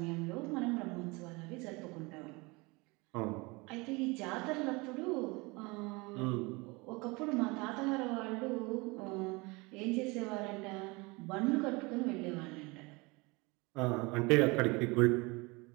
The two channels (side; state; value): left; quieter; 25.8 dB